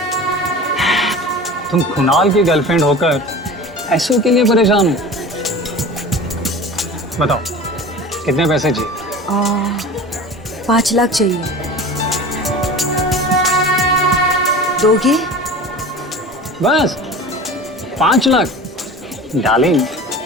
तुम कुणाल की गर्लफ्रेंड होकर पैसों के लिए परेशान हो? बताओ कितने पैसे चाहिए? 5 लाख चाहिए। दोगे? बस 5 लाख? डार्लिंग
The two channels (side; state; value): both; normal; correlation 0.36